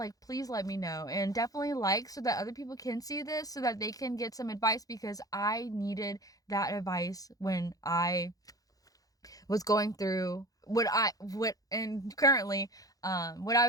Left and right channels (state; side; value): late; right; 0.17 ms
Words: please let me know. And definitely like, so that other people can see this, so that they can get some advice, because I needed that advice when I was going through what I was